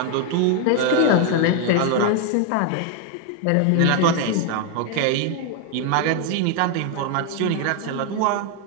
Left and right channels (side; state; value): both; different; correlation 0.01